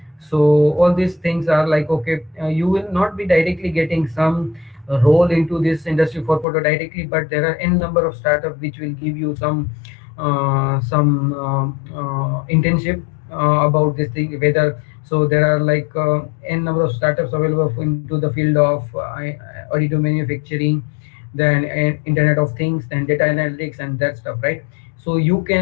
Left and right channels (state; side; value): drops out; right; at 6.5 s